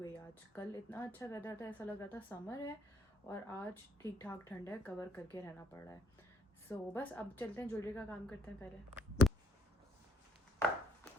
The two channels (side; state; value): both; normal; correlation 0.66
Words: आज। कल इतना अच्छा वेदर था, ऐसा लग रहा था समर है, और आज ठीक ठाक ठंड है, कवर करके रहना पड़ रहा है। सो बस अब चलते हैं, ज्वेलरी का काम करते हैं पहले।